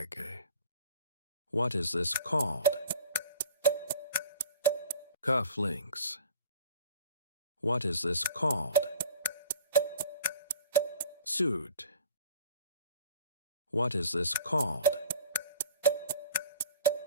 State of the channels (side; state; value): both; inverted; correlation -0.44